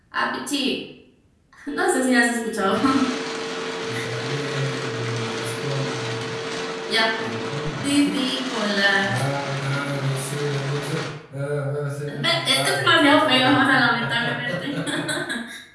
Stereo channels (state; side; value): identical; both; correlation 1.00